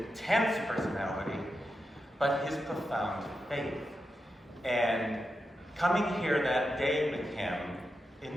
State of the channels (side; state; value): both; normal; correlation 0.88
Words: personality, but his profound faith. And coming here that day with him